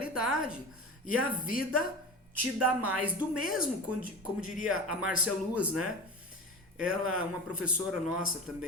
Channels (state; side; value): normal; both; correlation 0.30